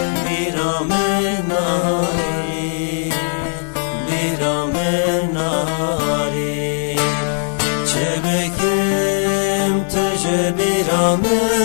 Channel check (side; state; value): right; silent; 65 dB below the other